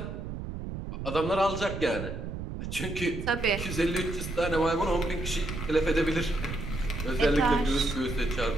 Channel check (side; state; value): right; noise; rumble, 6 dB below the sound